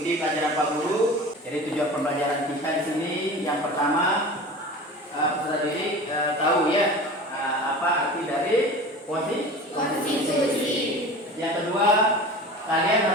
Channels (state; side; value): normal; both; correlation 0.36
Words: pelajaran Pak Guru. Jadi tujuan pembelajaran kita di sini yang pertama, peserta didik tahu ya apa arti dari konstitusi. Yang kedua, kalian